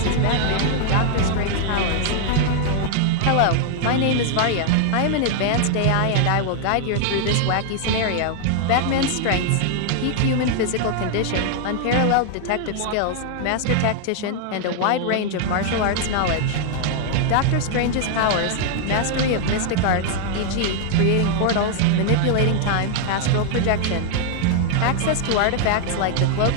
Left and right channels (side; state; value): both; different; correlation 0.00